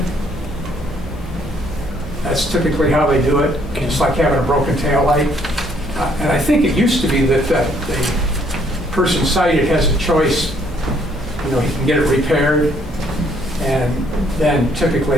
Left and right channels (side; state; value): right; noise; hum, 13 dB below the sound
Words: That's typically how they do it. It's like having a broken tail light. And I think it used to be that the person cited has a choice. You know, he can get it repaired, and then